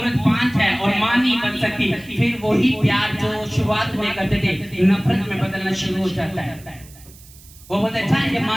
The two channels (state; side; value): noise; right; hiss, 23 dB below the sound